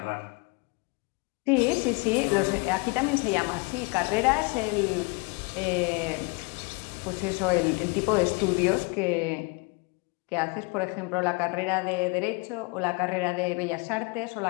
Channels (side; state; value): right; quieter; 30.5 dB